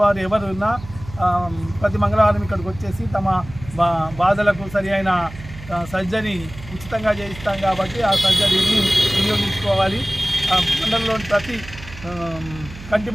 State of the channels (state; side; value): noise; right; hum, 15 dB below the sound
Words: ఎవరు ఉన్నా ప్రతి మంగళవారం ఇక్కడికి వచ్చేసి తమ బాధలకు సరి అయిన సర్జరీ ఉచితంగా చేయిస్తాం కాబట్టి ఆ సర్జరీని వినియోగించుకోవాలి. మండలంలోని ప్రతి కంటి